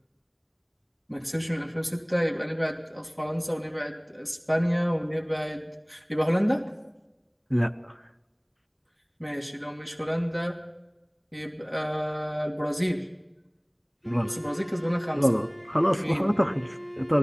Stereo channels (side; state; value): both; identical; correlation 1.00